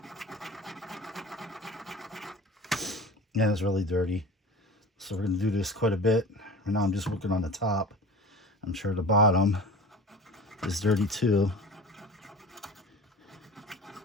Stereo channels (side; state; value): both; normal; correlation 0.37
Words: Yeah, it's really dirty. So we're going to do this quite a bit. Right now I'm just working on the top. I'm sure the bottom is dirty too.